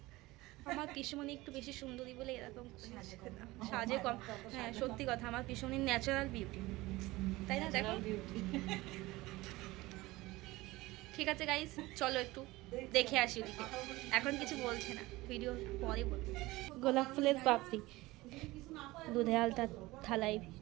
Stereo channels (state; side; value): quieter; left; 19.9 dB